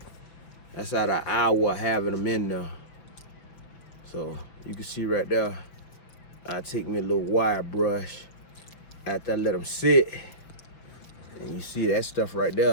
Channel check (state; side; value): late; right; 6.2 ms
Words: That's out of an hour of having them in there. So you can see right there, I take me a little wire brush after I let them sit, and you see that stuff right